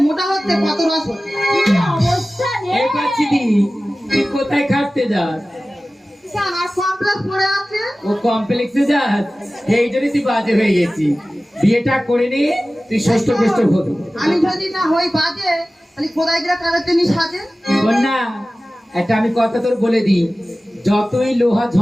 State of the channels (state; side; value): normal; both; correlation 0.96